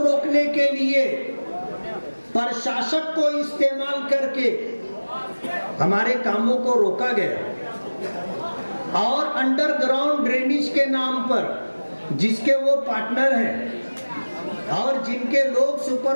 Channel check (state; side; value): inverted; both; correlation -1.00